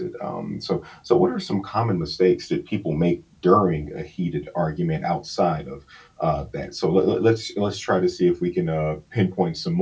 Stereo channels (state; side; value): identical; both; correlation 1.00